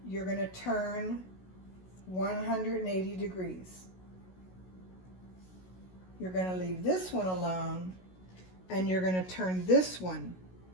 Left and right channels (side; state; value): right; late; 16 ms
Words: you're going to turn 180 degrees. You're going to leave this one alone, and you're going to turn this one